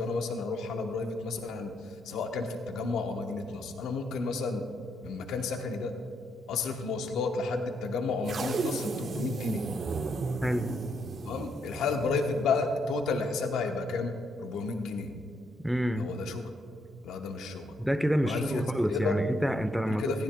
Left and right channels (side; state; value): both; normal; correlation 0.76